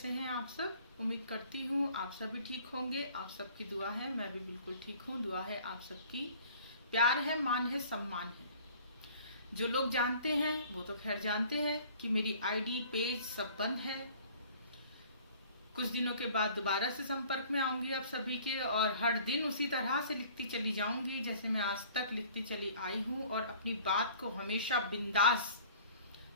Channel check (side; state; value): both; inverted; correlation -0.50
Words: हैं आप सब। उम्मीद करती हूँ आप सभी ठीक होंगे। आप सबकी दुआ है, मैं भी बिल्कुल ठीक हूँ। दुआ है आप सबकी, प्यार है, मान है, सम्मान है। जो लोग जानते हैं वो तो खैर जानते हैं कि मेरी आईडी पेज सब बंद है। कुछ दिनों के बाद दोबारा से संपर्क में आऊंगी आप सभी के, और हर दिन उसी तरह से लिखती चली जाऊंगी जैसे मैं आज तक लिखती चली आई हूँ, और अपनी बात को हमेशा बिंदास